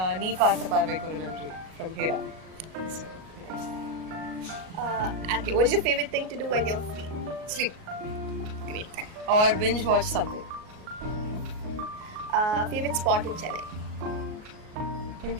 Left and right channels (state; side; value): late; left; 38 ms